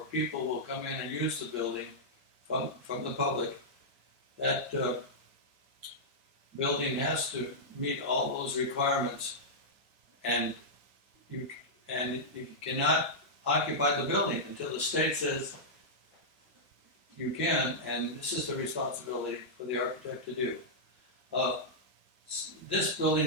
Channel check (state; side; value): normal; both; correlation -0.10